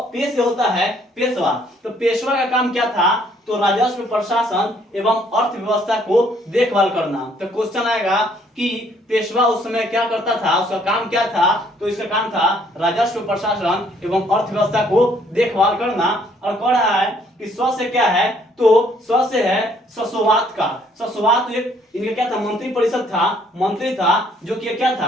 होता है पेशवा, तो पेशवा का काम क्या था, तो राजस्व प्रशासन एवं अर्थव्यवस्था को देखभाल करना। तो क्वेश्चन आएगा कि पेशवा उस समय क्या करता था, उसका काम क्या था, तो इसका काम था राजस्व प्रशासन एवं अर्थव्यवस्था को देखभाल करना। और कह रहा है कि स्व से क्या है, तो स्व से है ससोवात का, ससोवात इनका क्या था, मंत्री परिषद था, मंत्री था जो कि क्या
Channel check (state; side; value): normal; both; correlation 0.64